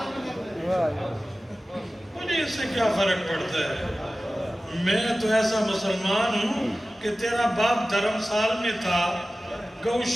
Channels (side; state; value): both; normal; correlation 0.96